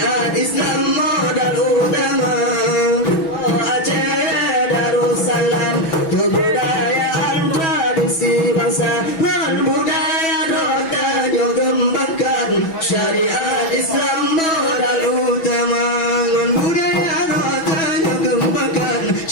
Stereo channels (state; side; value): late; right; 6.1 ms